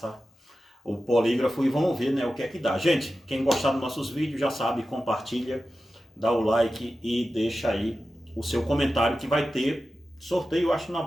o polígrafo e vamos ver, né, o que é que dá. Gente, quem gostar dos nossos vídeos já sabe, compartilha, dá o like e deixa aí o seu comentário que vai ter sorteio, acho, na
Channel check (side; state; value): both; normal; correlation 0.93